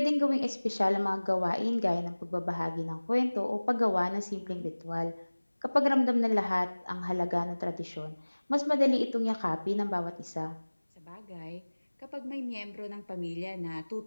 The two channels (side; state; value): both; inverted; correlation -1.00